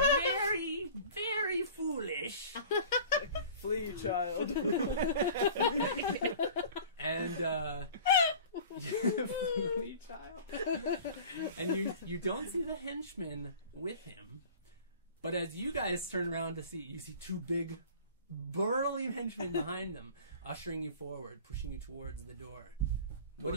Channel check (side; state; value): both; inverted; correlation -0.43